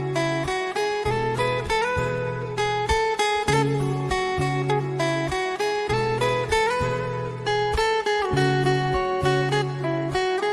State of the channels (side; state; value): both; identical; correlation 1.00